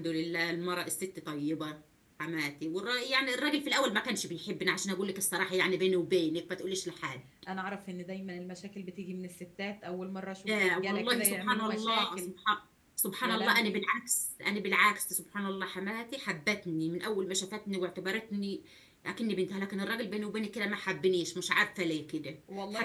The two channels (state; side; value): identical; both; correlation 1.00